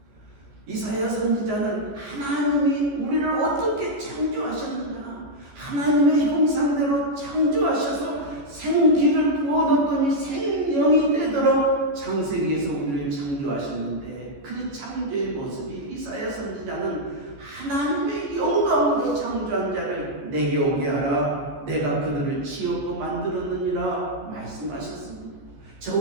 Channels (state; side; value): late; left; 14 ms